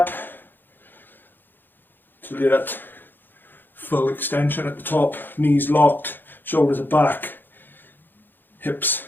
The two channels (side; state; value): right; late; 0.094 ms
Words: till you're at full extension at the top, knees locked, shoulders are back, hips